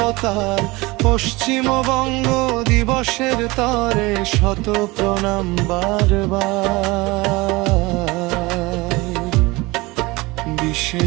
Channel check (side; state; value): left; quieter; 22.7 dB